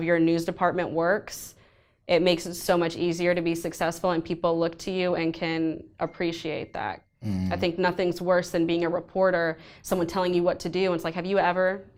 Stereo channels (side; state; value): both; identical; correlation 1.00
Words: your news department works, it makes it so much easier to be successful, and people look to you and can appreciate that. I think nothing's worse than being a reporter, someone telling you what to do, and it's like, have you ever